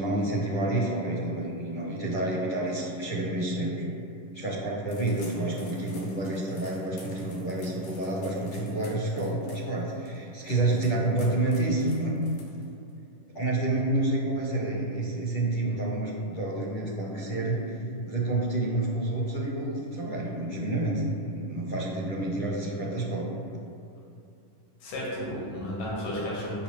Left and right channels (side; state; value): right; late; 10 ms